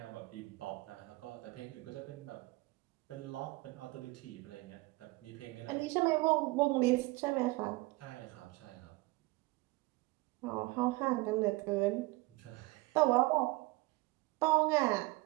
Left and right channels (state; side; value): quieter; left; 22.4 dB